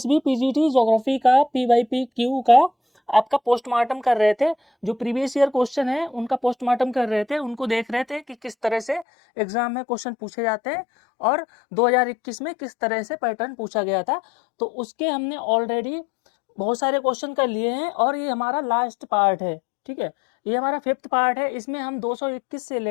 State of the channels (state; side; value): drops out; right; at 9.1 s